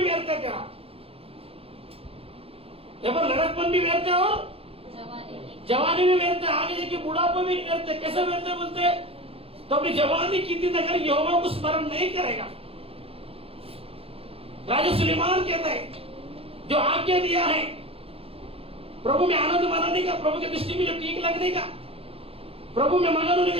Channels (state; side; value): late; left; 0.28 ms